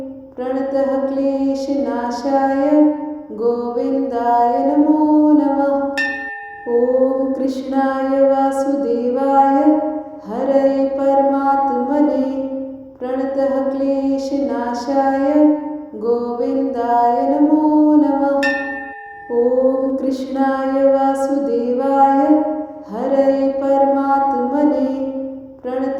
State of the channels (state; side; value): identical; both; correlation 1.00